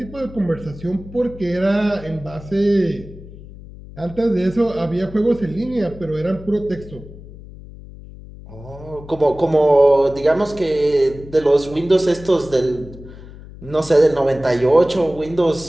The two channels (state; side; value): noise; left; hum, 17 dB below the sound